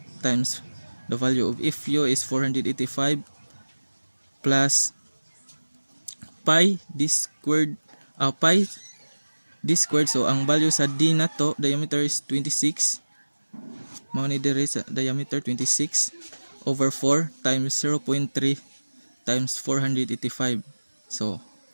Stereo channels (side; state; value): both; inverted; correlation -1.00